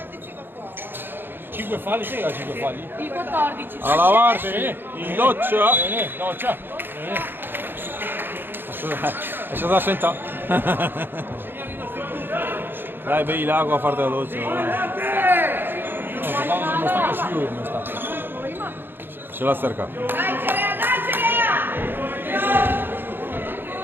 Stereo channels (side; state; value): left; late; 0.099 ms